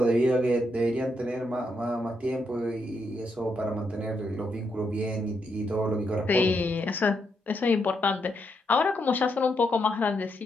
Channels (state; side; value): normal; both; correlation 0.80